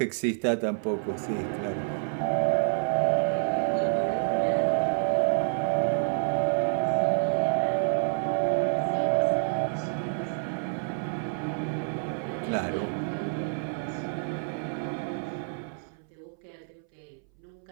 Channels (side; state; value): left; silent; 59 dB below the other